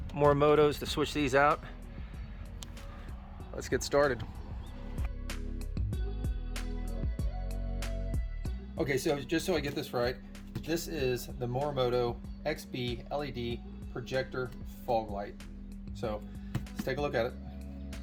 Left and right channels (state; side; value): identical; both; correlation 1.00